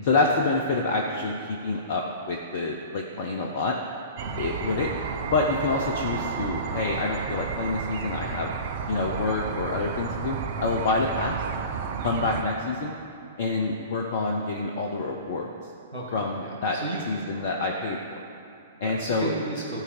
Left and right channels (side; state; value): both; inverted; correlation -0.39